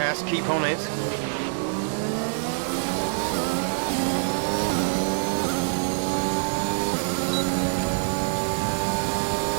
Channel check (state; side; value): silent; left; digital silence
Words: Keep on it.